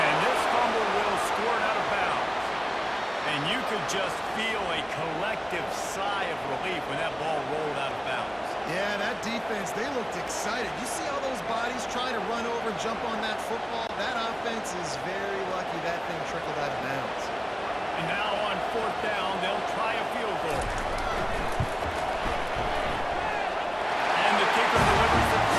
jump on that football. That offense is very lucky that thing trickled out of bounds. And now on fourth down, they'll try a field goal. And the kicker delivers the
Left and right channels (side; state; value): both; identical; correlation 1.00